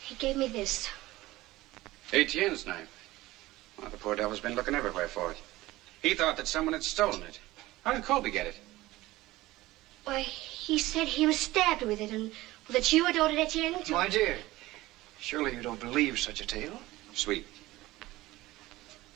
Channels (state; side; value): quieter; left; 18.1 dB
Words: gave me this. Etienne's knife. Well, the poor devil's been looking everywhere for it. He thought that someone had stolen it. How did Colby get it? Why, he said he was stabbed with it and that you had ordered Etienne to... My dear, surely you don't believe such a tale? Sweet.